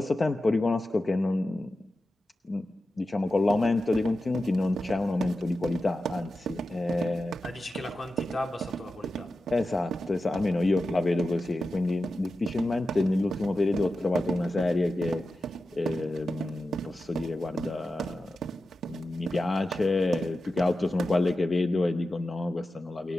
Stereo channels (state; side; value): normal; both; correlation 0.92